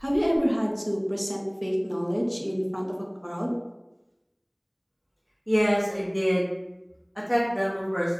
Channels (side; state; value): both; identical; correlation 1.00